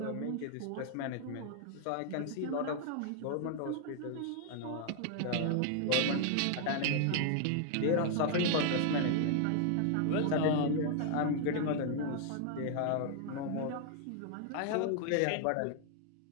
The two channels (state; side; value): different; both; correlation 0.00